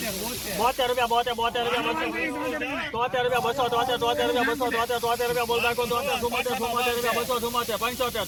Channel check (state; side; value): identical; both; correlation 1.00